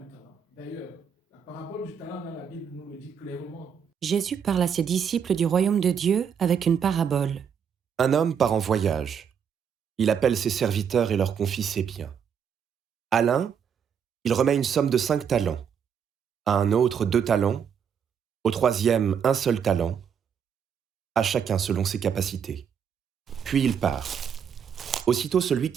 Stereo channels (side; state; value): left; quieter; 7.5 dB